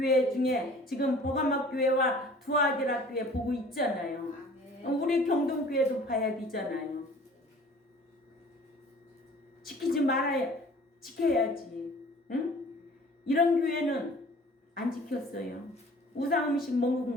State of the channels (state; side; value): normal; both; correlation 0.49